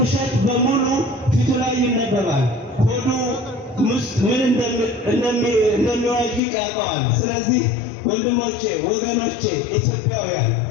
በሙሉ ፊቱ ላይ ይነበባል። ሆዱ ውስጥ ምን እንደሚዋዥቅ ያውቀዋል። ስለዚህ ወንድሞቼ፣ ወገኖቼ፣ ኢትዮጵያውያን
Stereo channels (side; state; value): right; drops out; at 6.4 s